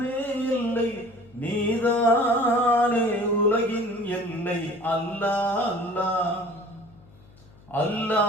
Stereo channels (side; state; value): left; noise; hum, 26 dB below the sound